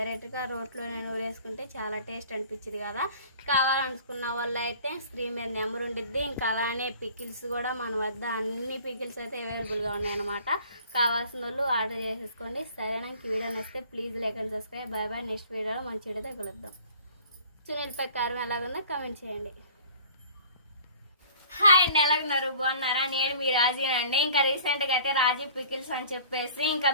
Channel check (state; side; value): inverted; both; correlation -0.48